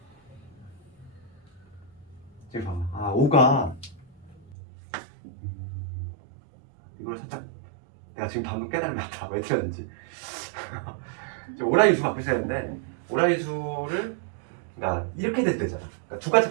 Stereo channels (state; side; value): drops out; left; at 4.5 s